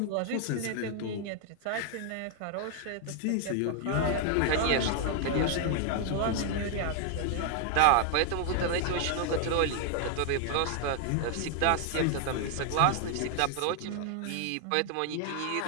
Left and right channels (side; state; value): both; different; correlation 0.00